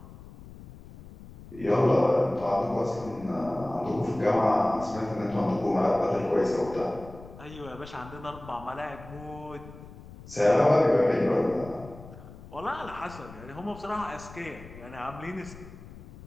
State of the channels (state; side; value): noise; left; rumble, 17 dB below the sound